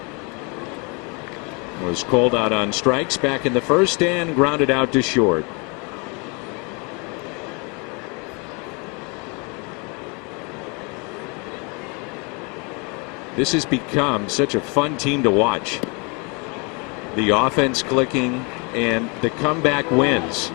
Was called out on strikes back in the first and grounded out to short. This has become such a fun team to watch. The offense clicking and the comeback wins.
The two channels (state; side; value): quieter; right; 32.0 dB